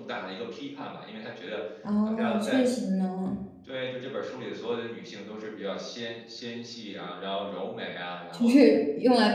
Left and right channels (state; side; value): identical; both; correlation 1.00